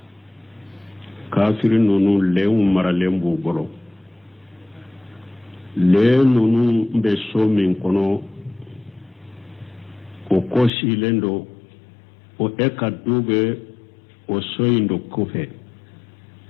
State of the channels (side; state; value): right; drops out; at 10.7 s